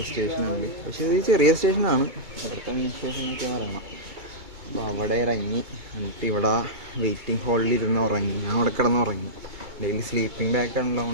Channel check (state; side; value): late; left; 2.2 ms